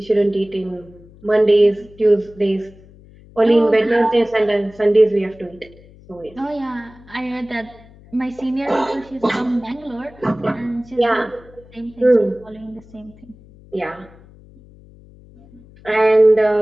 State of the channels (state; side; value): noise; left; hum, 24 dB below the sound